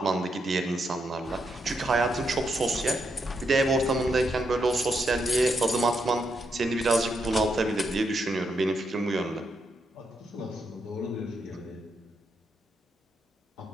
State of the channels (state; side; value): normal; both; correlation 0.81